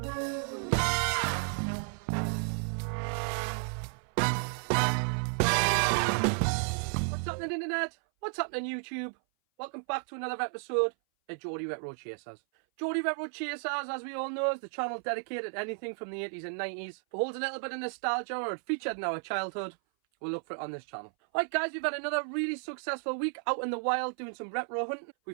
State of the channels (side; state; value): left; silent; 56 dB below the other